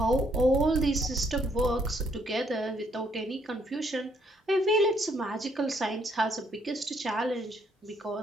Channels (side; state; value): both; normal; correlation 0.70